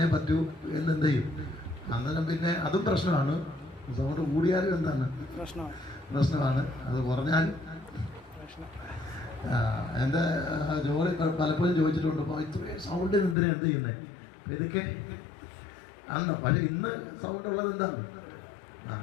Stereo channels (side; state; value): right; drops out; at 13.4 s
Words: പറ്റൂ എന്നെന്ത് ചെയ്യും. അന്നേരം പിന്നെ അതും പ്രശ്നമാണ്. സൗണ്ട് കൂടിയാലും എന്താണ് പ്രശ്നമാണ്, അത് കുറഞ്ഞാലും. എൻ്റെ ജോലി പലപ്പോഴും ചോദിച്ചിട്ടുണ്ട്, അപ്പോൾ ഇത്രയും സൗണ്ടിന് എന്തിനാ എന്ത് ചെയ്യുന്നത്, ഇതൊക്കെ ആണോ. പക്ഷെ ഇന്ന് സൗണ്ട് ഉള്ളത് എന്താണ്?